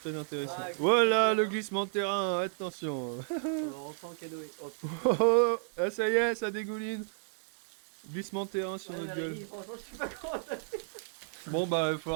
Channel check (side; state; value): left; silent; 56 dB below the other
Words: intéressant. Voilà le glissement de terrain, attention. On va rentrer en canoë. Oh, Oh, oh, ah, ça y est, ça dégouline. Glissement de terrain sur notre gueule. Franchement, je sais pas comment ça fait. Bon bah il va